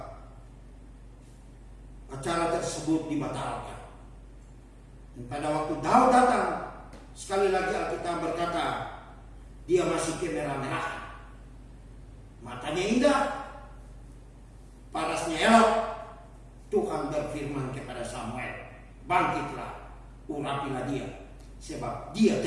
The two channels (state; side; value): identical; both; correlation 1.00